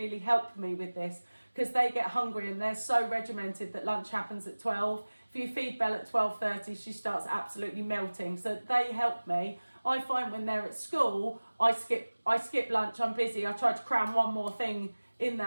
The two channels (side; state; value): both; inverted; correlation -1.00